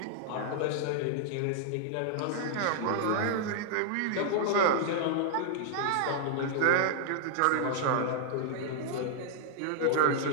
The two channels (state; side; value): different; both; correlation -0.01